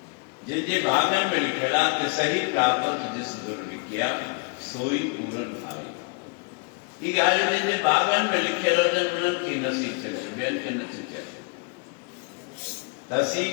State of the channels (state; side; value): quieter; right; 33.7 dB